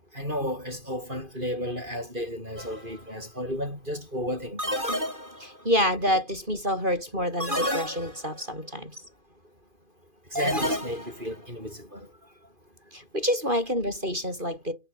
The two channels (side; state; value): left; late; 2.5 ms